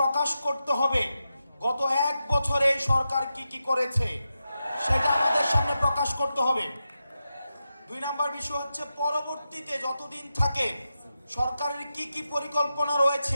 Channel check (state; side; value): inverted; both; correlation -0.90